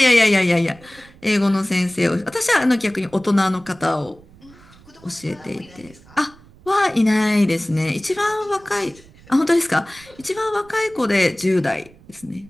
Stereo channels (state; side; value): noise; right; rumble, 25 dB below the sound